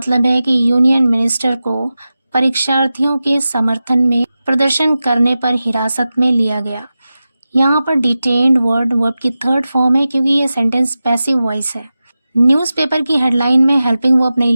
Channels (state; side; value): inverted; both; correlation -0.94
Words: है कि यूनियन मिनिस्टर को परीक्षार्थियों के समर्थन में प्रदर्शन करने पर हिरासत में लिया गया। यहाँ पर डिटेन्ड वर्ब की थर्ड फॉर्म है क्योंकि ये सेंटेंस पैसिव वॉइस है। न्यूज़पेपर की हेडलाइन में हेल्पिंग वर्ब नहीं